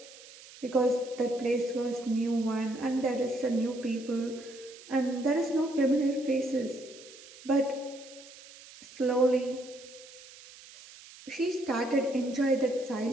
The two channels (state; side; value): noise; right; hiss, 19 dB below the sound